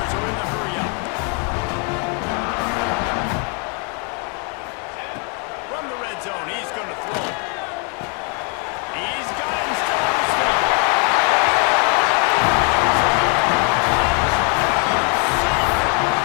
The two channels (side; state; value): right; quieter; 37.4 dB